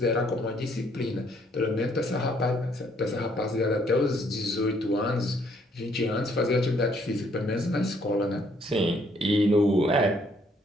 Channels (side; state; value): both; normal; correlation 0.67